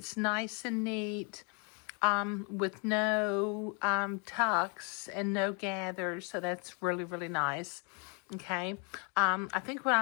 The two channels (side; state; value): right; quieter; 35.1 dB